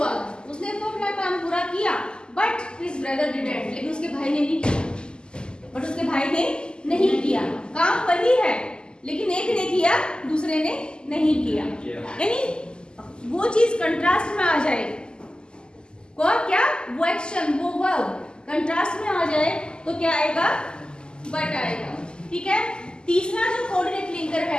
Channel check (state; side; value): late; right; 0.047 ms